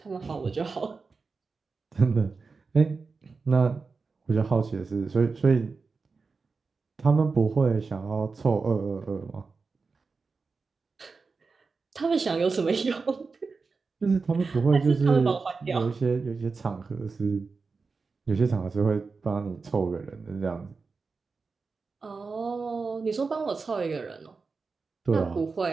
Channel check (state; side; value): quieter; left; 4.5 dB